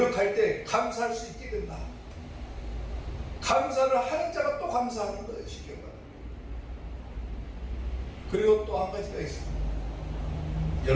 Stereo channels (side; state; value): both; identical; correlation 1.00